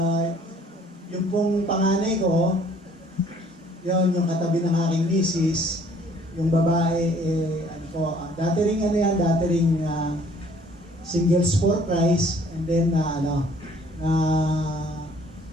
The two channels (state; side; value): normal; both; correlation 0.58